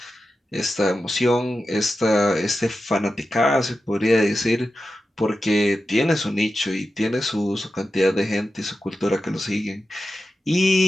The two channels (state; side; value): normal; both; correlation 0.91